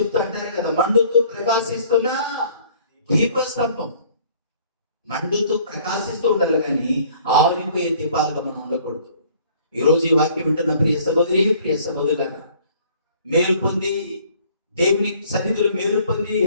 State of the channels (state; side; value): inverted; both; correlation -0.56